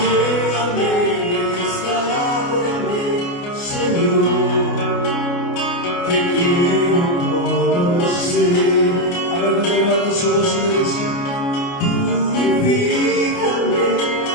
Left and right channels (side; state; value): right; late; 29 ms